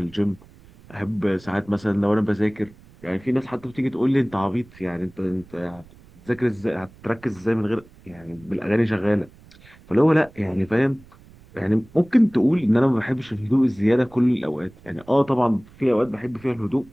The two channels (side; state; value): right; noise; rumble, 24 dB below the sound